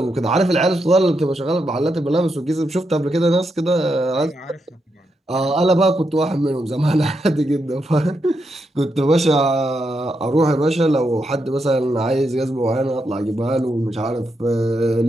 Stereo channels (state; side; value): normal; both; correlation 0.83